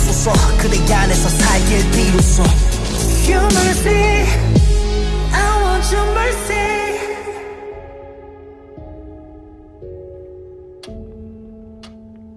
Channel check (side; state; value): both; identical; correlation 1.00